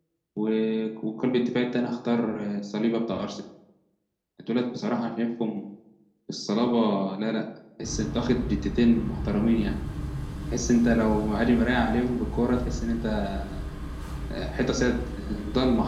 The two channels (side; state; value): both; identical; correlation 1.00